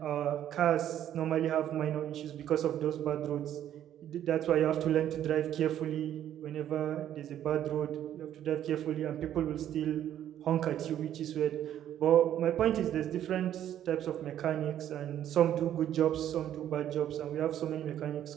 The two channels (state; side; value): quieter; left; 11.0 dB